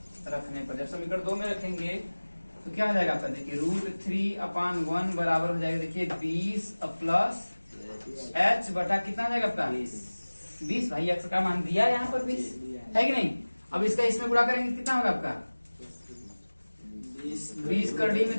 रखने पर, जब समीकरण 2 में रखेंगे तो क्या हो जाएगा आपका, देखिए √3/1 बराबर हो जाएगा, देखिए 20 प्लस h बटा कितना हो जाएगा आपका 20। भाई x का मान दिया यहाँ पर 20 है कि नहीं। अब इसका इसमें गुणा करेंगे कितना होगा आपका 20 कर डी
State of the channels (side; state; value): both; inverted; correlation -1.00